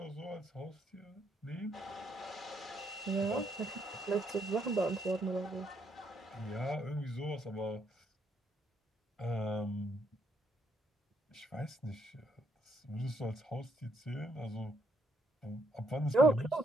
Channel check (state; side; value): normal; both; correlation 0.73